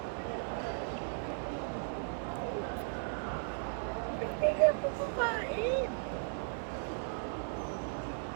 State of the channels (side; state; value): left; silent; digital silence